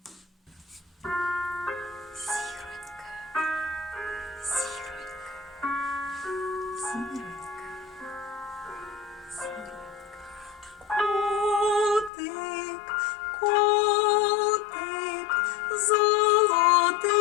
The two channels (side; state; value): right; drops out; at 12.1 s